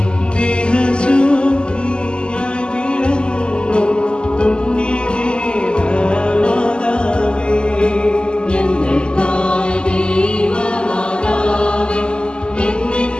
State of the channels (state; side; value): late; right; 0.049 ms